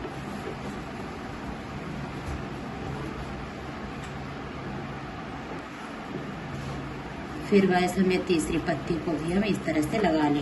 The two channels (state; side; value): identical; both; correlation 1.00